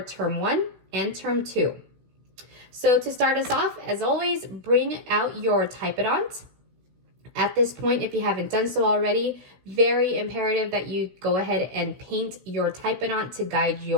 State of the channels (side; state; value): left; late; 16 ms